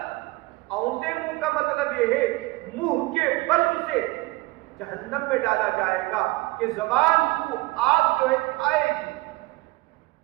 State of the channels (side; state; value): left; quieter; 22.0 dB